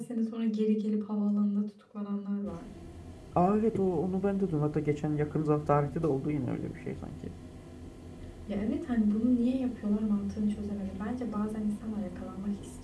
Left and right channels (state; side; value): identical; both; correlation 1.00